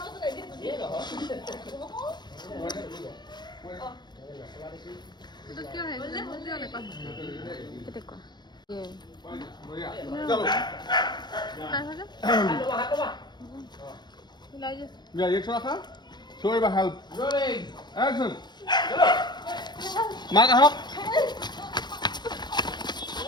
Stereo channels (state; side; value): late; right; 0.21 ms